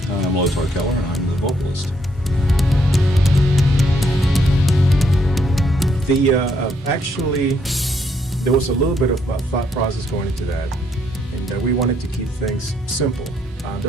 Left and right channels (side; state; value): both; normal; correlation 0.72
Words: I'm Keller, and I'm the vocalist. Actually, there was a little bit of thought process going into that, and we wanted to keep things simple.